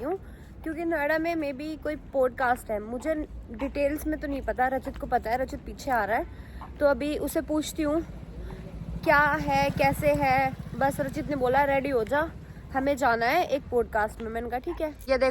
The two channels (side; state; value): both; identical; correlation 1.00